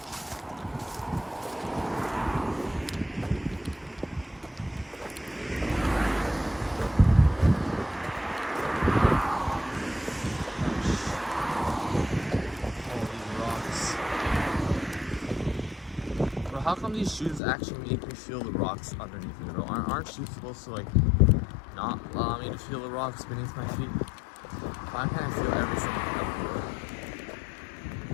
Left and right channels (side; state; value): right; drops out; at 17.4 s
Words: How come these shoes actually make me feel the rocks underneath me, bro? Aren't shoes supposed to, like, not allow me to feel the rocks beneath my feet? Why can't I feel everything everywhere?